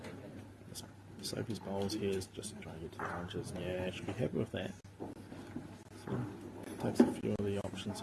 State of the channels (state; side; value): identical; both; correlation 1.00